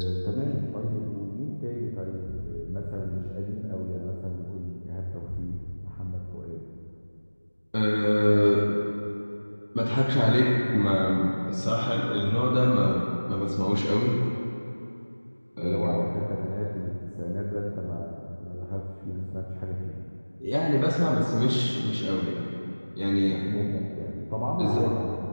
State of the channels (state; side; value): inverted; both; correlation -1.00